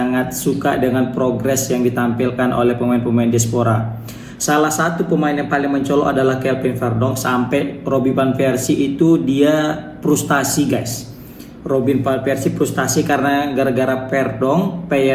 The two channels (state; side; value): identical; both; correlation 1.00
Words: suka dengan progres yang ditampilkan oleh pemain-pemain diaspora. Salah satu pemain yang paling mencolok adalah Kelvin Verdonk. Sampai Robin van Persie itu dia frustasi guys. Robin van Persie frustasi karena gara-gara Verdonk,